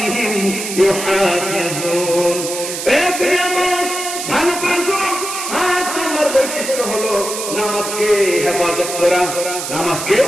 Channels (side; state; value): right; noise; hiss, 6 dB below the sound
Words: ইউহাফিজুন। ভালো করে শুনো, 7 নাম্বার বৈশিষ্ট্য হলো নামাজকে হেফাজত করা। নামাজকে